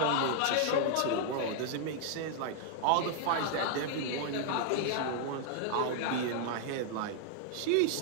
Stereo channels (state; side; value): different; both; correlation -0.01